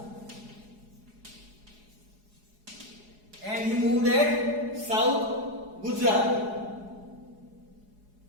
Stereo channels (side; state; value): left; late; 4.8 ms